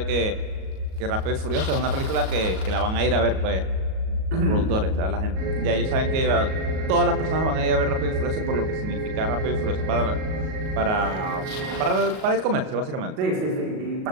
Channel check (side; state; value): left; late; 37 ms